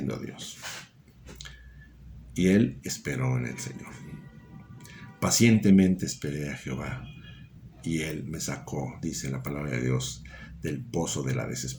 a Dios y él esperó en el Señor. Pacientemente esperé a Jehová y él me sacó, dice la palabra de Dios, del pozo de la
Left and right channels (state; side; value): identical; both; correlation 1.00